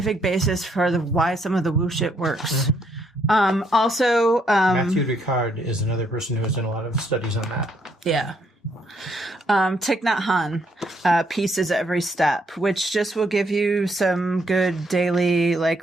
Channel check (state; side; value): normal; both; correlation 0.72